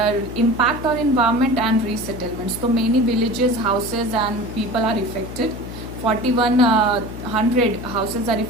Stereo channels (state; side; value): noise; left; hum, 11 dB below the sound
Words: impact on environment and resettlements. तो many villages, houses and people are affected. 4100 houses are